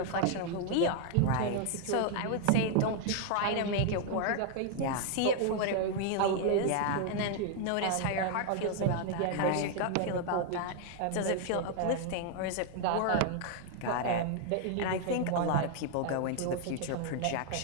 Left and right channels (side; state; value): both; different; correlation 0.00